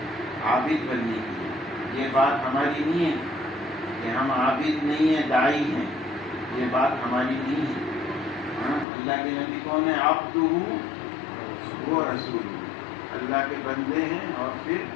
عابد بننے کی ہے. یہ بات ہماری نہیں ہے کہ ہم عابد نہیں ہیں، داعی ہیں. یہ بات ہماری نہیں ہے. اللہ کے نبی کون ہے؟ عبدہ و رسول. اللہ کے بندے ہیں اور پھر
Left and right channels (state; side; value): drops out; right; at 8.8 s